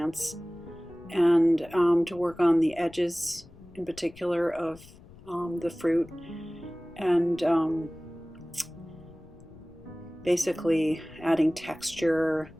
and to work on the edges in particular of the fruit, and basically adding texture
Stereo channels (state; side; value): noise; left; rumble, 22 dB below the sound